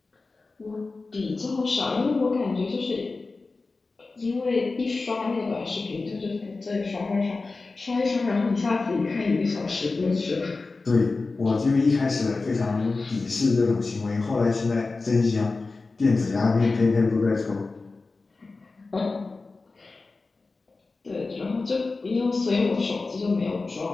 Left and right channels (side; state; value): right; quieter; 3.8 dB